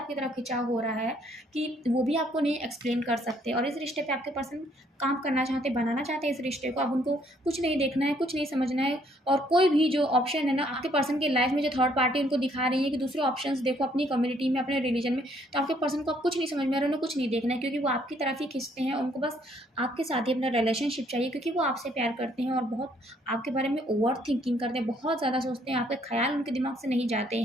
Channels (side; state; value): both; normal; correlation 0.66